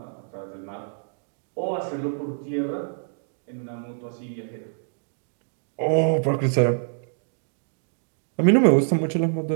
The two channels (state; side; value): silent; left; digital silence